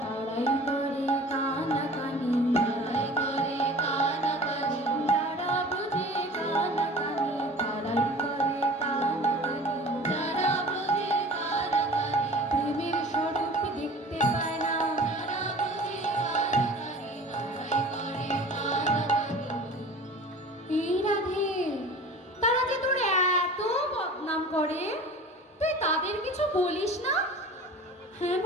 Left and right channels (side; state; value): both; normal; correlation 0.41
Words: পাড়ায় করে কানাকানি, পাড়ায় করে কানাকানি, যারা বুঝে কানাকানি, তারাই করে কানাকানি, যারা বুঝে কানাকানি, প্রেমের স্বরূপ দেখতে পায় না, যারা বুঝে কানাকানি, তারাই করে কানাকানি। এই রাধে, তারা যে তোর এত বদনাম করে, তুই তাদের কিছু বলিস না? হ্যাঁ